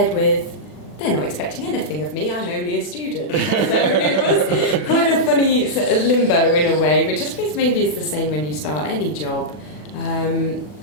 with they're not expecting anything of me, I'm only a student. So it was quite a funny sort of limbo in a way, which I suppose maybe is the same when you start any job.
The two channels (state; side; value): late; right; 40 ms